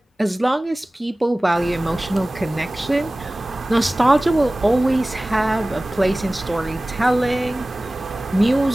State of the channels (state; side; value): normal; both; correlation 0.98